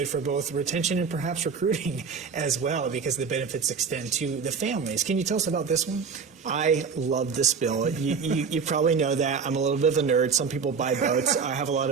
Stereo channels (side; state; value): left; quieter; 5.8 dB